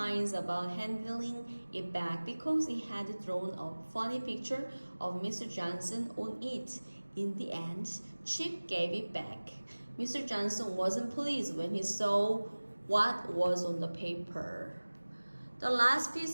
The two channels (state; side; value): inverted; both; correlation -1.00